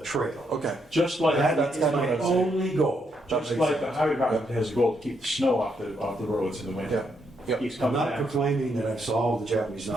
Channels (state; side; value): normal; both; correlation 0.77